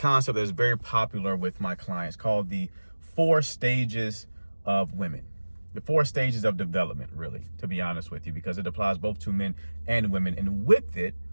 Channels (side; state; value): both; inverted; correlation -1.00